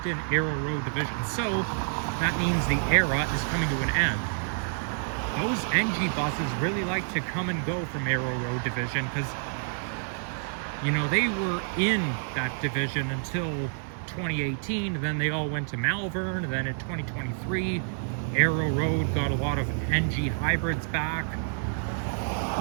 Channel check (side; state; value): left; silent; digital silence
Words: in Arrow Road Division, so that means the era is coming to an end. Those NG buses really like to come and go from Arrow Road Division because, you know, they were in that division until 2018, then they all went to Malvern, and then in 2023, Arrow Road got a lot of NG hybrids back,